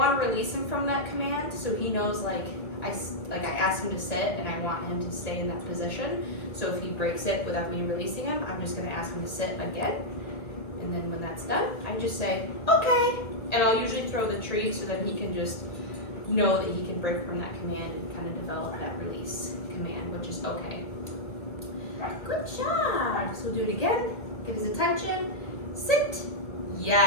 to release him from that command, so he knows I asked him to sit and I want him to stay in that position. So if he breaks it without me releasing him, I'm just gonna ask him to sit again. And then when that's done, I just say, okay. And I'll usually throw the treat so that he can just know that he can break from that command and kind of develop that release command, which is okay. Good job. So we'll do it again. Get his attention. Sit.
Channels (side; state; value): right; late; 1.7 ms